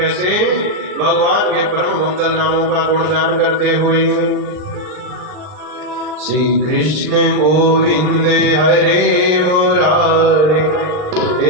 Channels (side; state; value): left; late; 39 ms